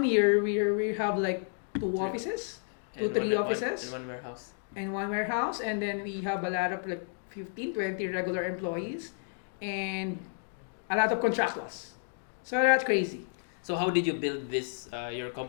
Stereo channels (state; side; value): silent; right; digital silence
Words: year, we have like 2 offices, And 3 one- offices, and one warehouse. and 1 warehouse, and then we have a lot of like 15, 20 regular employees, and a lot of contractors. So that's crazy. So how did you build this your